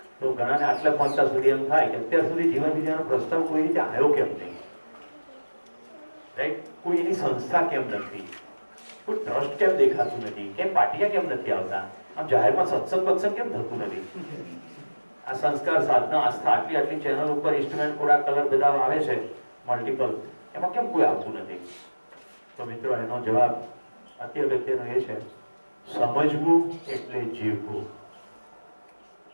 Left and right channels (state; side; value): inverted; both; correlation -1.00